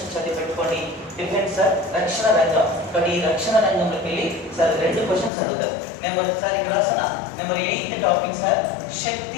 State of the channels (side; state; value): right; drops out; at 5.3 s